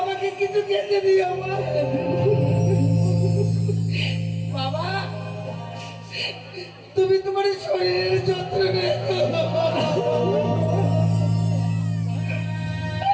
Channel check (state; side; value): identical; both; correlation 1.00